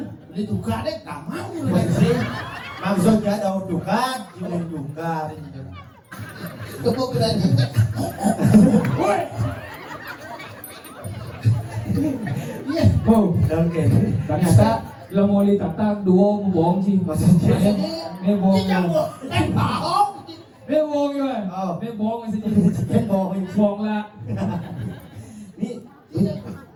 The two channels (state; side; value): identical; both; correlation 1.00